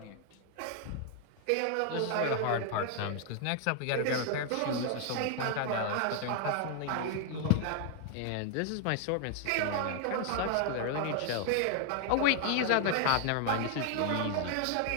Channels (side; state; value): both; different; correlation 0.00